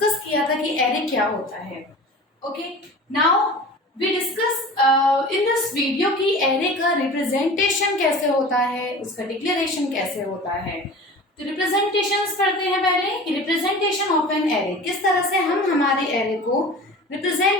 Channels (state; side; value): normal; both; correlation 0.38